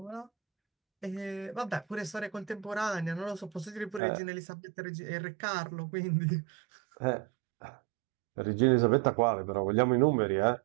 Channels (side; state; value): left; drops out; at 4.0 s